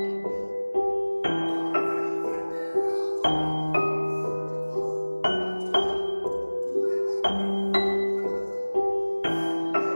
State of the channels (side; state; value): both; inverted; correlation -1.00